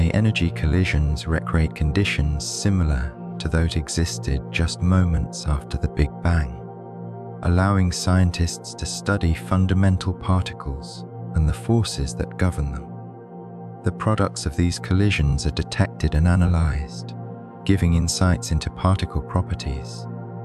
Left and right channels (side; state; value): both; identical; correlation 1.00